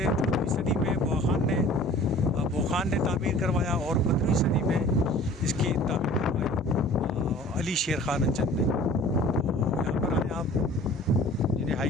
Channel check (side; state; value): both; normal; correlation 0.46